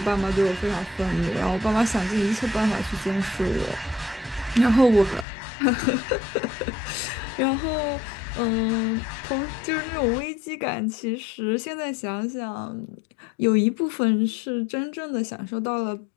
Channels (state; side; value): drops out; right; at 5.2 s